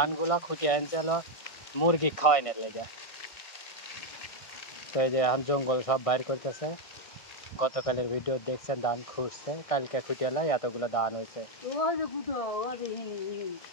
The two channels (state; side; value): late; right; 1.7 ms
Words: খুঁটিয়ে আনছে হলো মুরগি খাওয়াই না লেগে তো এই যে এখন জঙ্গল সব বাইর করতেছে গতকালের ভিডিও দেখছেন ধান খুঁজছে কালকে খুঁটিয়ে এতগুলো ধান হয়েছে ওই যে গুঁড়ো